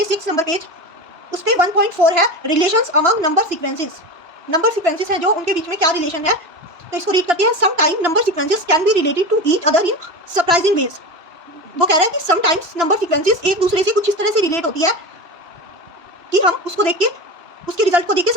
6 नंबर पेज उस पर 1.4 है, relations among number sequences. Number sequences हैं जो उनके बीच में क्या रिलेशन है, तो इसको रीड करते हैं। Some time number sequences can be related to each other in surprising ways. वो कह रहा है कि सम टाइम्स नंबर सीक्वेंसेस एक दूसरे से कुछ इस तरह से रिलेट होती है कि हम उसको देख के, उसके रिजल्ट को देख के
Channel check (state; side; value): late; left; 3.0 ms